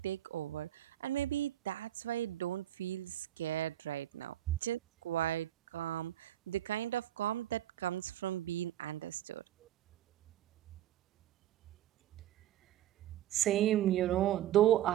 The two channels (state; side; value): quieter; left; 12.5 dB